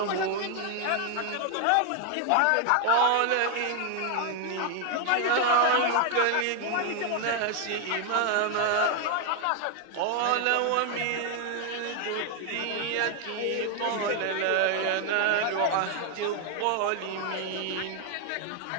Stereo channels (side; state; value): both; different; correlation 0.00